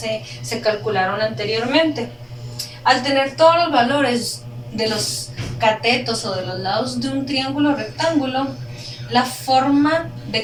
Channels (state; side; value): identical; both; correlation 1.00